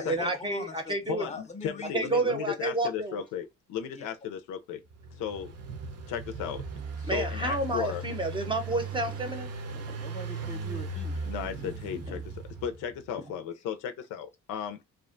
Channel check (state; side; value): normal; both; correlation 0.12